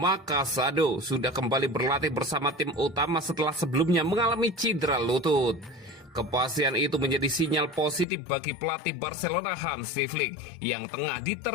Casado, sudah kembali berlatih bersama tim utama setelah sebelumnya mengalami cedera lutut. Kepastian itu menjadi sinyal positif bagi pelatih Barcelona Hansi Flick yang tengah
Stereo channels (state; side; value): drops out; right; at 8.1 s